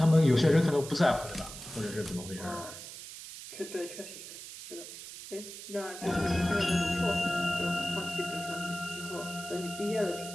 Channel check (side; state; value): right; noise; hiss, 12 dB below the sound